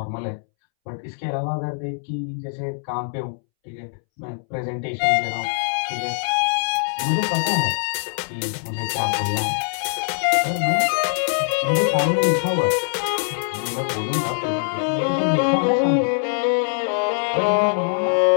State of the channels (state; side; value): silent; right; 64 dB below the other